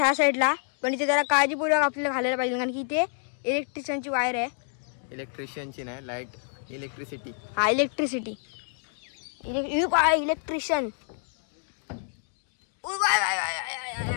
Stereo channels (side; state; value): right; silent; 59 dB below the other